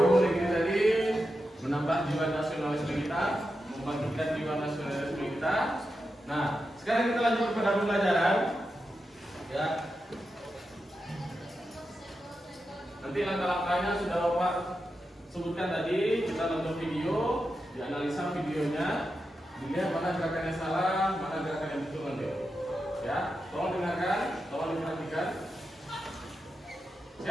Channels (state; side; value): normal; both; correlation 0.89